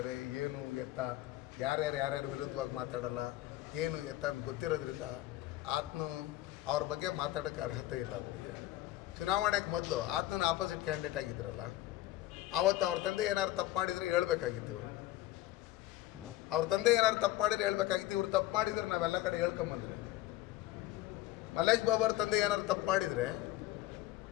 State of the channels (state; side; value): quieter; right; 15.3 dB